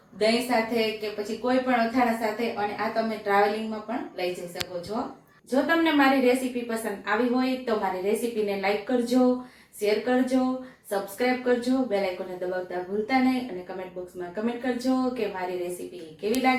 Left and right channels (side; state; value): both; identical; correlation 1.00